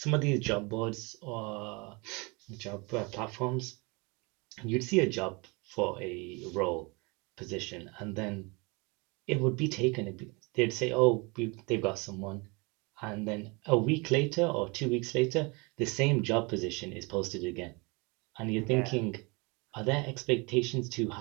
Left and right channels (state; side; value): quieter; left; 28.4 dB